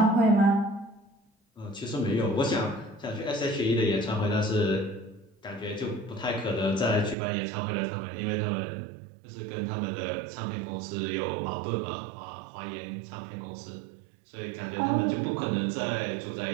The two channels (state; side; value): drops out; left; at 7.2 s